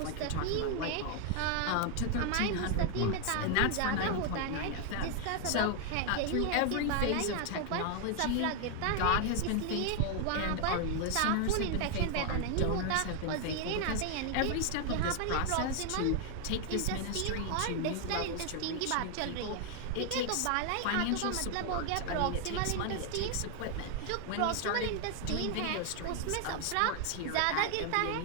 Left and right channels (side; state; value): both; different; correlation 0.00